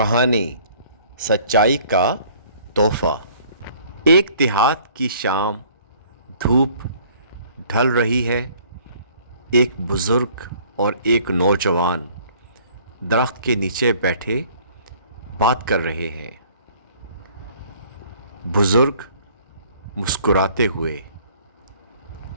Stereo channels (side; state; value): both; inverted; correlation -0.56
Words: سچائی کا تحفہ۔ ایک دیہات کی شام، دھوپ ڈھل رہی ہے۔ ایک بزرگ اور ایک نوجوان درخت کے نیچے بیٹھے بات کر رہے ہیں۔ بزرگ مسکراتے ہوئے،